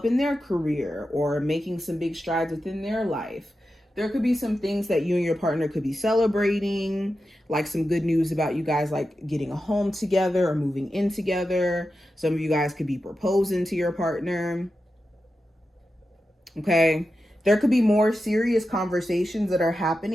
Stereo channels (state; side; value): normal; both; correlation 0.90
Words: in their career or making some big strides within their life. There could be some things that you and your partner could be celebrating, like some good news about you guys like getting a home together or moving in together. Some of you guys could be proposing to your partner. Okay. There could be more serious conversations that are